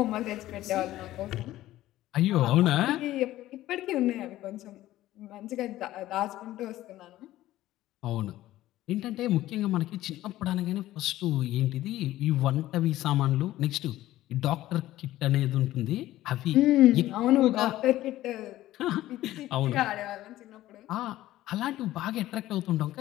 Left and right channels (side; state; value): right; quieter; 15.1 dB